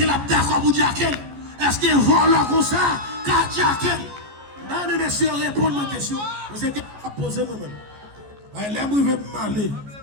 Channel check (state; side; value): late; left; 14 ms